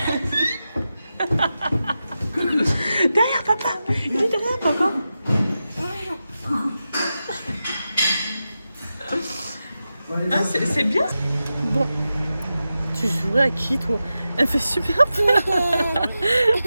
Derrière papa. Il est derrière papa. Ah, c'est bien. Bon. Tu jouerais à qui toi? Elle fait super peur.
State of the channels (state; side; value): inverted; both; correlation -0.91